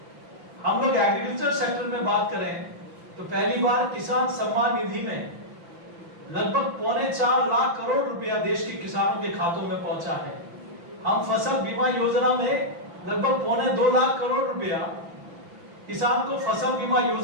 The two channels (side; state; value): left; late; 5.9 ms